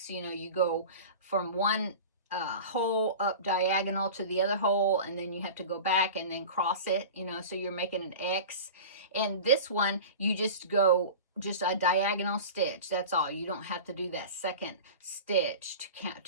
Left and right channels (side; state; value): both; inverted; correlation -0.34